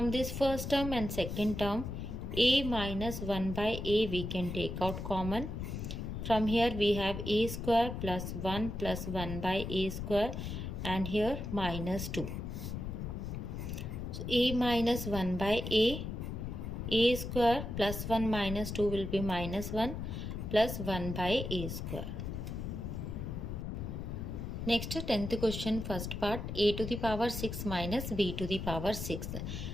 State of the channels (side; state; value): left; noise; rumble, 5 dB below the sound